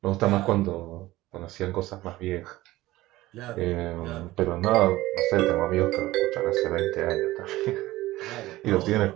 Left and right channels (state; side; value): quieter; left; 17.4 dB